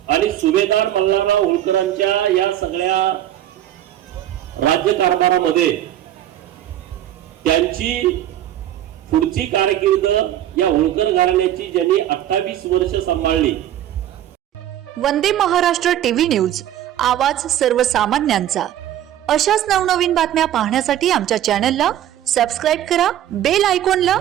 आणि सुभेदार मल्हारराव होळकरांच्या या सगळ्या राज्यकारभारामध्ये त्यांची पुढची कारकीर्द या होळकर घराण्याची ज्यांनी 28 वर्ष सांभाळली. वंदे महाराष्ट्र टीव्ही न्यूज, आवाज सर्वसामान्यांचा. अशाच नवनवीन बातम्या पाहण्यासाठी आमच्या चॅनलला सबस्क्राईब करा, बेल आयकॉनला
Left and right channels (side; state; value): left; quieter; 12.0 dB